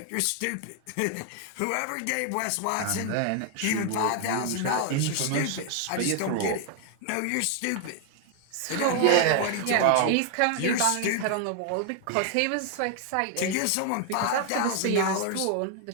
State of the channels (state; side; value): different; both; correlation 0.00